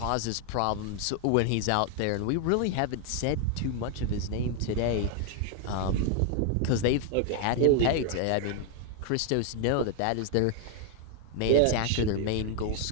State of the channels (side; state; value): both; different; correlation 0.00